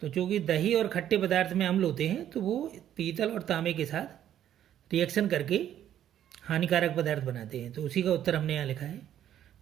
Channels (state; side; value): quieter; left; 10.9 dB